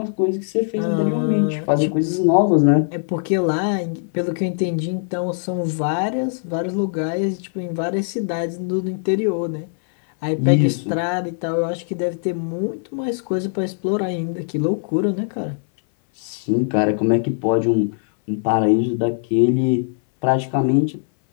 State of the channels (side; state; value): right; silent; 59 dB below the other